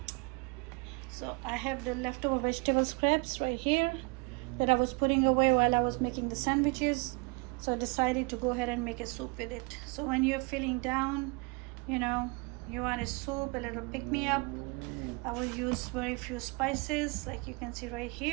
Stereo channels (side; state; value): left; quieter; 30.5 dB